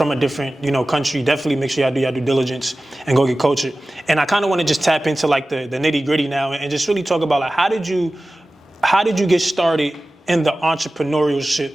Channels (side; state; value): both; normal; correlation 0.96